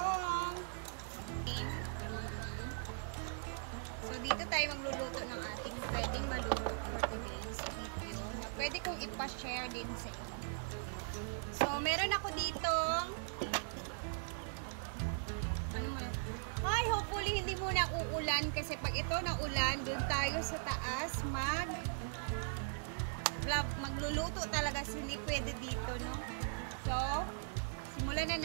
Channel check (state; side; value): silent; left; digital silence